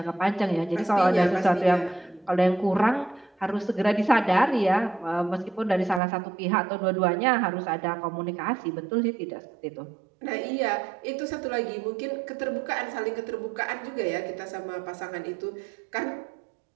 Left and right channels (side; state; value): left; drops out; at 6.0 s